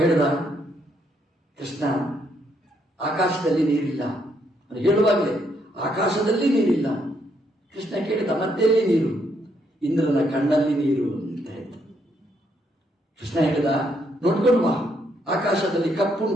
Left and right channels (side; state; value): both; normal; correlation 0.74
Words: ಹೇಳಿದ, ಕೃಷ್ಣ ಆಕಾಶದಲ್ಲಿ ನೀರಿಲ್ಲ. ಅದು ಹೇಳುವಾಗಲೇ ಆಕಾಶದಲ್ಲಿ ನೀರಿಲ್ಲ. ಕೃಷ್ಣ ಕೇಳಿದ, ಮತ್ತೆಲ್ಲಿ ನೀರು? ಇಂದ್ರನ ಕಣ್ಣಲ್ಲಿ ನೀರು ಅಂತ ಹೇಳ್ತ. ಕೃಷ್ಣ ಹೇಳಿದ, ನೋಡ್ಕೊಂಡು ಬಾ, ಆಕಾಶದಲ್ಲಿ